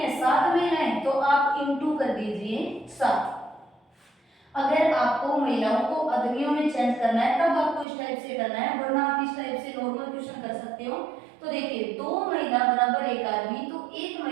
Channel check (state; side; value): drops out; left; at 7.9 s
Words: 7 महिलाएं, तो आप इंटू कर दीजिए 7। अगर आपको महिलाओं को आदमियों में चेंज करना है तब आपको इस टाइप से करना है, वरना आप इस टाइप से नॉर्मल क्वेश्चन कर सकते हो। तो देखिए 2 महिला बराबर 1 आदमी, तो 1